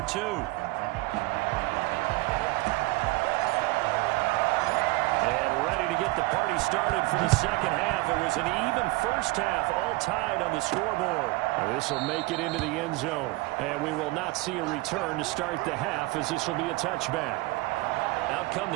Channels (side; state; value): left; quieter; 22.4 dB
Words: 2. To get the party started for the second half. It was an even first half, all tied on the scoreboard. This will make it into the end zone, and we will not see a return to start the half as this will be a touchback. Out come